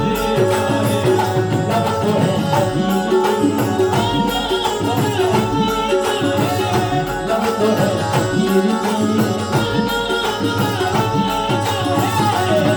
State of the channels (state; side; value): identical; both; correlation 1.00